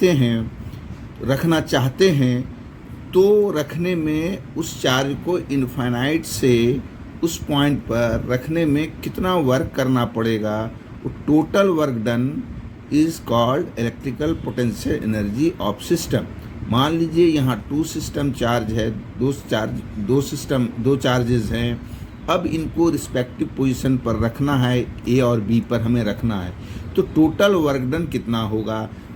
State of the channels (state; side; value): identical; both; correlation 1.00